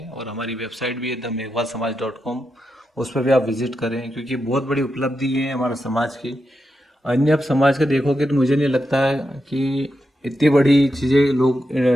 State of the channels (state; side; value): normal; both; correlation 0.87